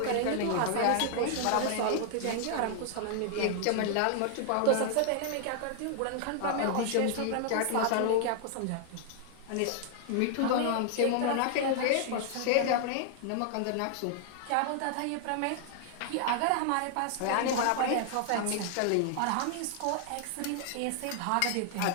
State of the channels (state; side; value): different; both; correlation 0.00